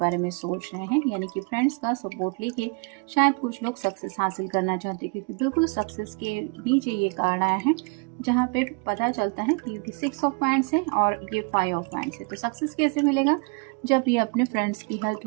में सोच रहे हैं। यानी कि फ्रेंड्स का सपोर्ट लेके शायद कुछ लोग सक्सेस हासिल करना चाहते हैं, क्योंकि बिल्कुल सक्सेस के नीचे ये कार्ड आया है जहाँ पे पता चलता है कि क्योंकि 6 ऑफ वांड्स है और ये 5 ऑफ वांड्स है। तो सक्सेस कैसे मिलेगा? जब ये अपने फ्रेंड्स की हेल्प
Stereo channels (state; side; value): quieter; left; 32.4 dB